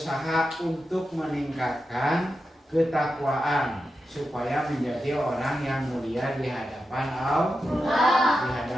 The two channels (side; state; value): both; normal; correlation 0.90